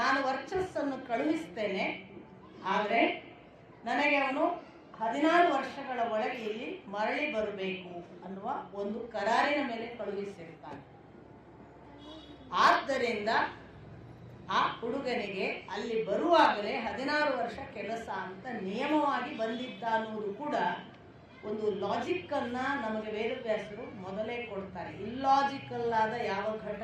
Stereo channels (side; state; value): both; identical; correlation 1.00